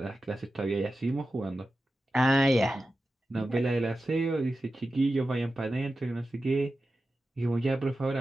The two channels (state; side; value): normal; both; correlation 0.92